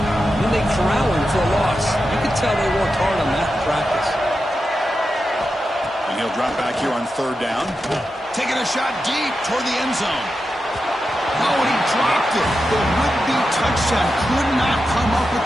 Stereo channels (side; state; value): both; normal; correlation 0.89